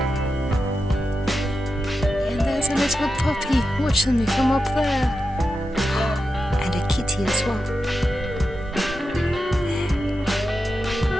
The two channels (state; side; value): normal; both; correlation 0.89